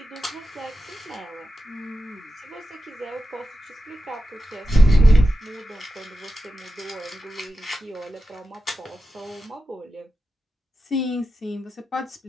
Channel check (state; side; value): normal; both; correlation 0.91